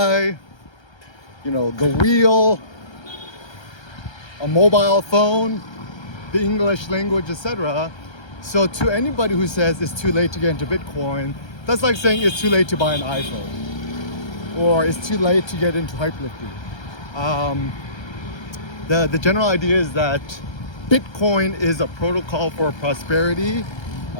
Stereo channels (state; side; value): late; right; 1.3 ms